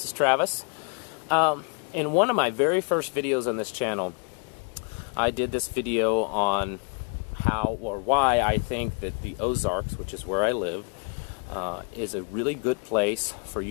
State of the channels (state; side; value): quieter; right; 38.6 dB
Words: is Travis. In one of my very first videos on this channel, I did this video on how or why I think that the Ozarks, which is where I live, is a really good place for